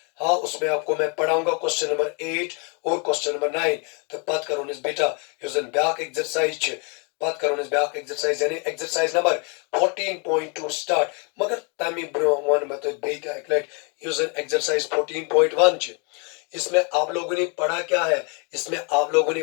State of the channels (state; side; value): quieter; right; 34.9 dB